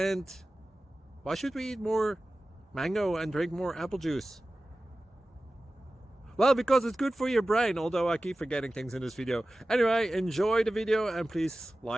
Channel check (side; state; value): both; normal; correlation 0.96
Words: why should we eat more mango and drink more apple juice? Well, because it's good for your brain, although I keep forgetting things in this video. Anyway, enjoy the video and please